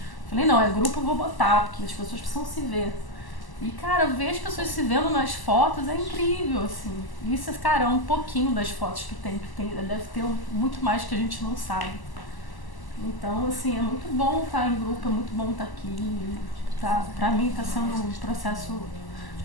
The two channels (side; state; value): right; late; 1.0 ms